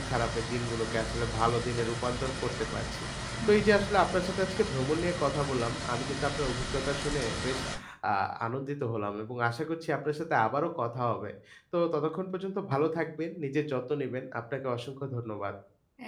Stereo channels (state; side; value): identical; both; correlation 1.00